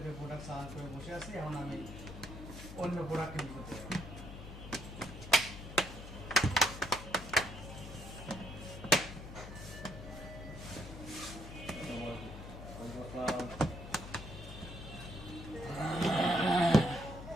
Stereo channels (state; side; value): noise; left; hum, 12 dB below the sound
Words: প্রোডাক্ট সার্চ করে বসে আছি, এখন আমি অন্য প্রোডাক্ট কিনতে করতে পারি।